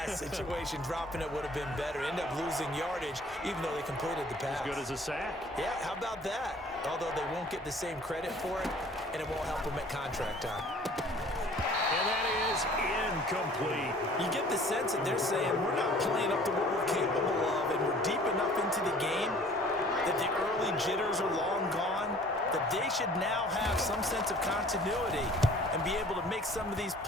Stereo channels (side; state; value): both; normal; correlation 0.51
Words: situation, dropping it would have been better. End up losing yardage even though they completed the pass. As good as a sack. Yeah, how about that? Although they won't get the same credit for it, and it won't help them at contract time. And that is incomplete. You get the sense that they're saying we're not playing up to what we're capable of, and we're deep enough into the game that the early jitters are long gone, that they should now have some sense of continuity and be able to make some of these